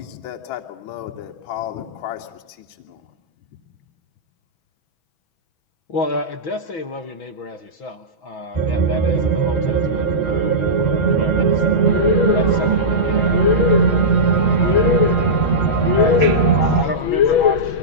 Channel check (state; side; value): late; right; 6.2 ms